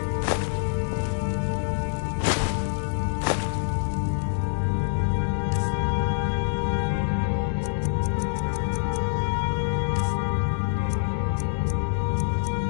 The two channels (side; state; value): right; silent; digital silence